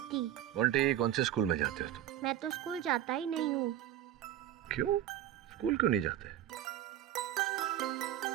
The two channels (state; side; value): quieter; left; 12.0 dB